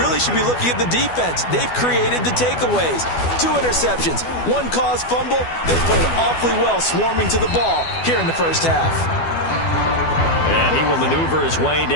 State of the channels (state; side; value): late; right; 12 ms